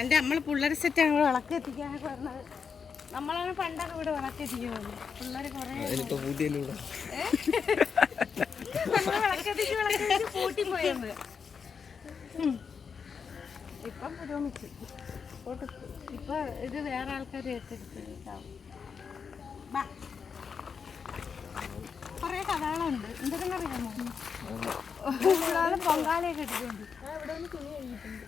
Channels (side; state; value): right; quieter; 6.1 dB